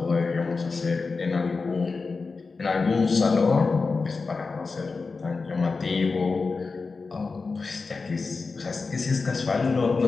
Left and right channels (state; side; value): quieter; right; 4.3 dB